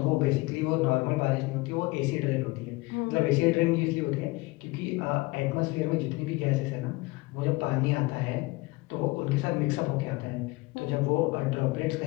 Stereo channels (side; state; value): right; quieter; 22.8 dB